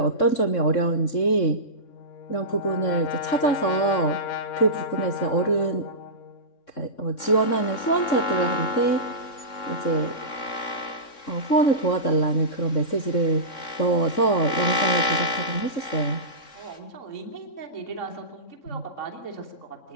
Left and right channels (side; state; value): right; late; 3.6 ms